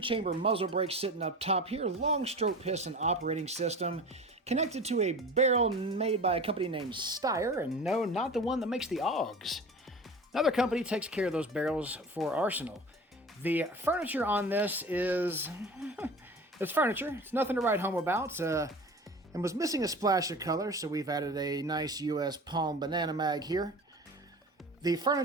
muzzle brake sitting up top here. Long stroke piston operating system connected to a barrel made by a company named Steyr, and no, not the one that makes the AUGs. Another company takes care of those barrels for Arsenal. The furniture on this is... it's furniture. It's nothing to write home about. And was missing a splash of color, so we've added a nice US Palm banana mag here. The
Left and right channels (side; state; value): both; normal; correlation 0.36